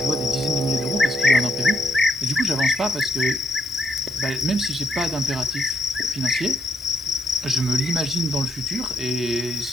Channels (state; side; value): normal; both; correlation 0.74